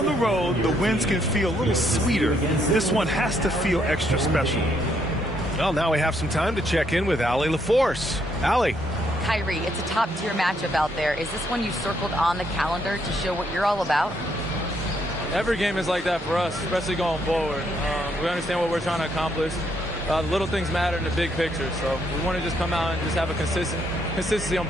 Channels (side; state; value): both; normal; correlation 0.73